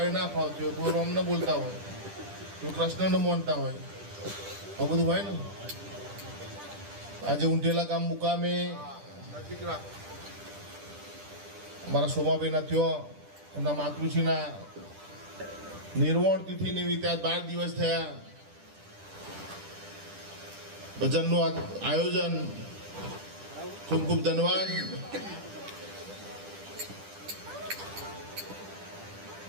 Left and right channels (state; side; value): late; left; 10 ms